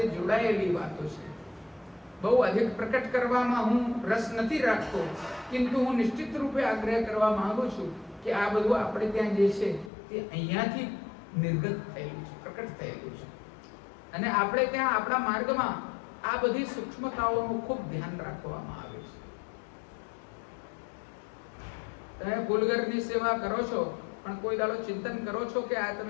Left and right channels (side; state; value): right; drops out; at 9.9 s